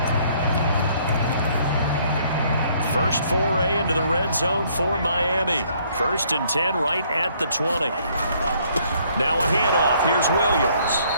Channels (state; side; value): inverted; both; correlation -0.64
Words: First foray into the red zone for Miami. 1st and 10 right at the 20. Now a handoff. Here's Williams.